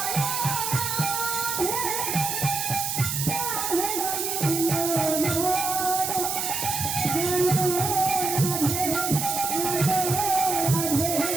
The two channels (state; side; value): noise; right; hiss, 2 dB below the sound